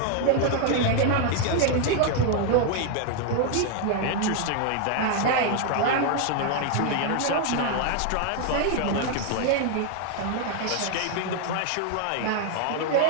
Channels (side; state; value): both; different; correlation 0.00